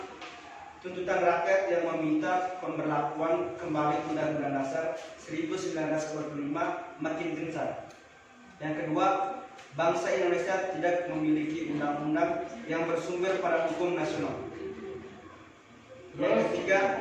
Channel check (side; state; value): both; identical; correlation 1.00